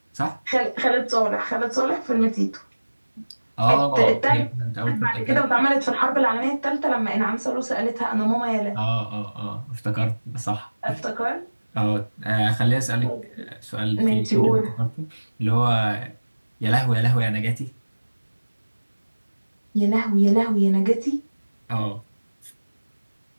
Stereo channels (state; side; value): inverted; both; correlation -1.00